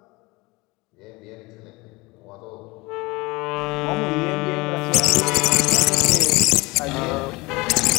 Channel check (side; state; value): right; quieter; 23.4 dB